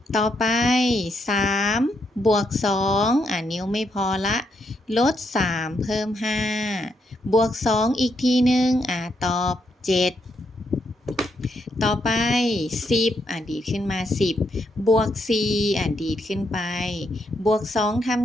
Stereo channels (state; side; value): normal; both; correlation 0.78